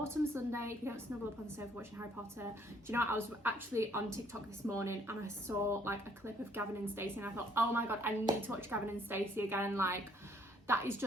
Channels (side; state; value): both; normal; correlation 0.64